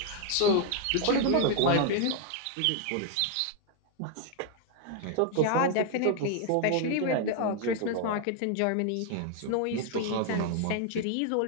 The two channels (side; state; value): both; different; correlation 0.00